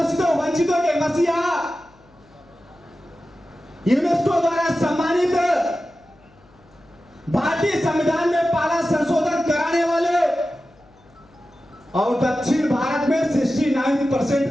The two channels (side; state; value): left; noise; hum, 30 dB below the sound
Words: वंचितों के मसीहा, यूनेस्को द्वारा सम्मानित, भारतीय संविधान में पहला संशोधन कराने वाले और दक्षिण भारत में 69%